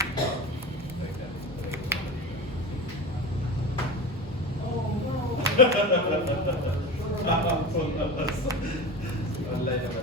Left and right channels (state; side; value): normal; both; correlation 0.29